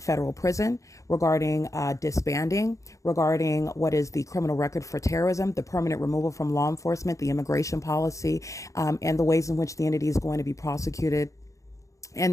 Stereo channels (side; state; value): right; late; 0.15 ms